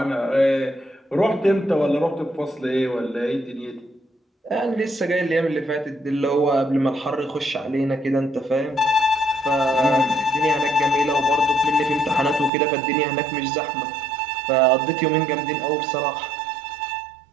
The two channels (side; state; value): left; drops out; at 12.5 s